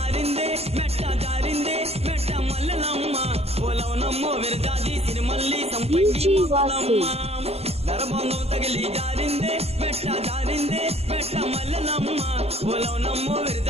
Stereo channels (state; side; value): late; left; 0.30 ms